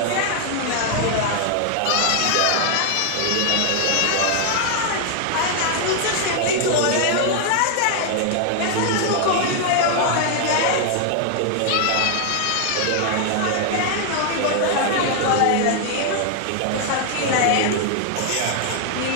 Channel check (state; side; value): different; both; correlation 0.00